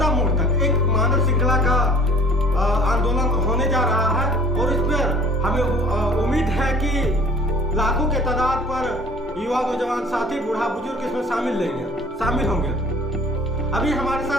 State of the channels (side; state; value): both; normal; correlation 0.48